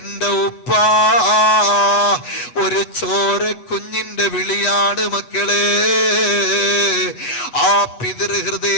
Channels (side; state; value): right; late; 8.1 ms